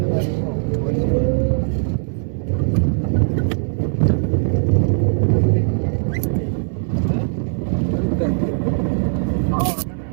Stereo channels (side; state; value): left; silent; digital silence